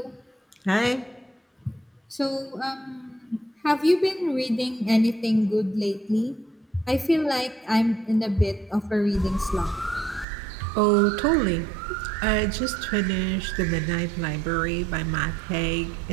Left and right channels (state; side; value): drops out; left; at 10.2 s